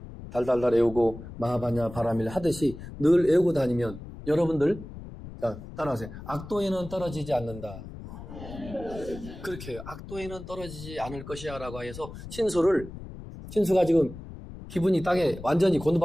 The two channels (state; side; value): noise; left; rumble, 13 dB below the sound